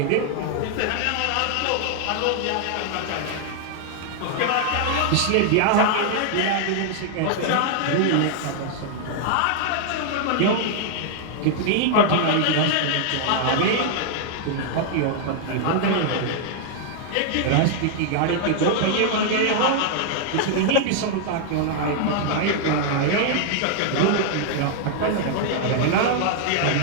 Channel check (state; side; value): different; both; correlation 0.00